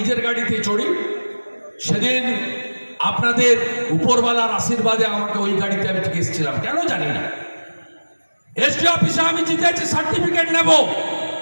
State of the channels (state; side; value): inverted; both; correlation -1.00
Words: গাড়িতে চড়ি। সেদিন আপনাদের উপরওয়ালার আশীর্বাদে আমাকে ওই গাড়িতে আমি ঠিক এসেছিলাম, কেন জানি না। এসডি অফিসে আমি জিতেছি, সার্টিফিকেট নেব।